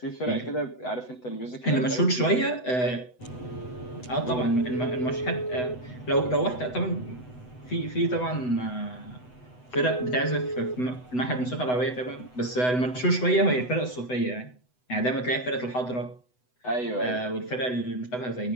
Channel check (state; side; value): late; right; 8.0 ms